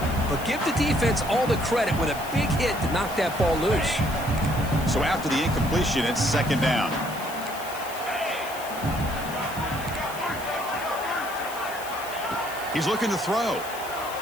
But give the defense all the credit with a big hit to knock that ball loose. So after the incompletion, it's 2nd down. He's looking to throw.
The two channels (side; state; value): left; noise; hiss, 14 dB below the sound